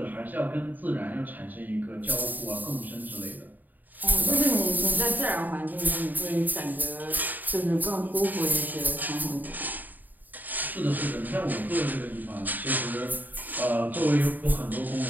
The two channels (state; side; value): late; left; 0.086 ms